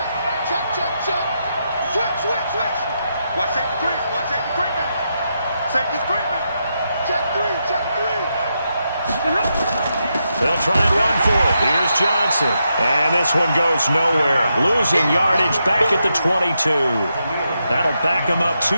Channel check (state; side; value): inverted; both; correlation -0.83